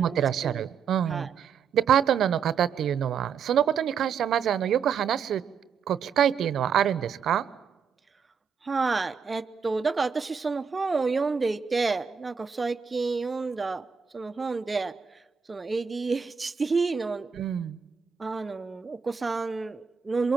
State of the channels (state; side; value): quieter; left; 6.6 dB